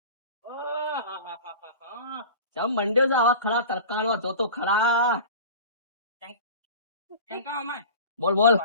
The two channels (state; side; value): inverted; both; correlation -0.37